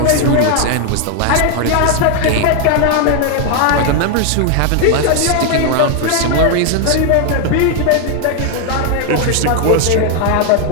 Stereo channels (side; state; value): both; different; correlation 0.00